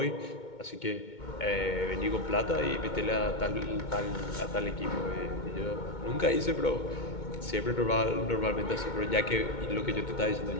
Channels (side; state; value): right; late; 2.2 ms